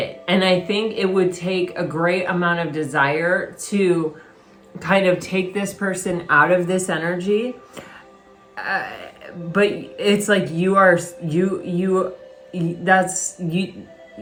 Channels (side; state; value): both; identical; correlation 1.00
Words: And I think it would take a great amount of desire to kind of take this person out of this energy. But it's like you